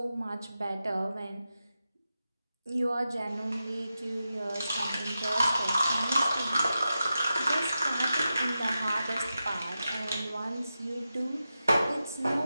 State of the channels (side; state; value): both; inverted; correlation -0.91